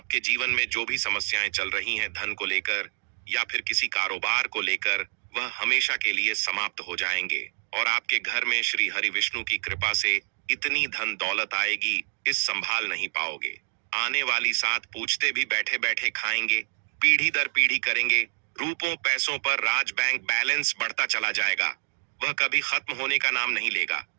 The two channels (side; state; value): left; silent; digital silence